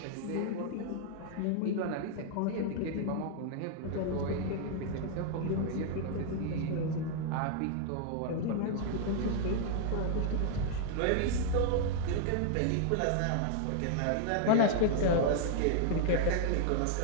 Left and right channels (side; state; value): both; different; correlation 0.00